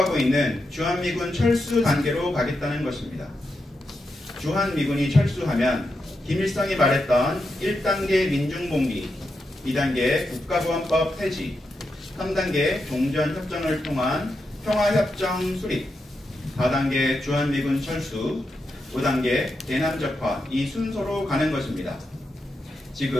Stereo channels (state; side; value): normal; both; correlation 0.86